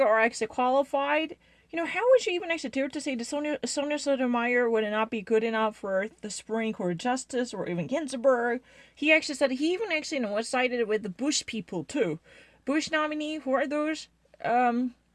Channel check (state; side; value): identical; both; correlation 1.00